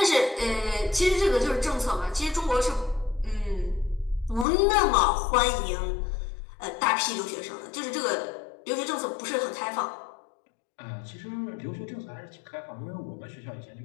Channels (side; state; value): right; drops out; at 4.5 s